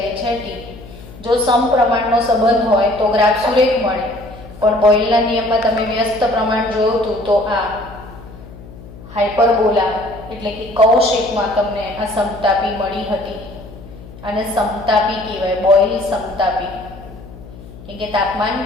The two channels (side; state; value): left; noise; hum, 17 dB below the sound